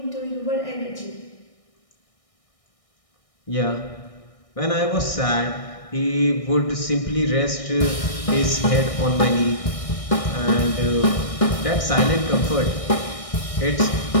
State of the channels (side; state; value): right; late; 1.6 ms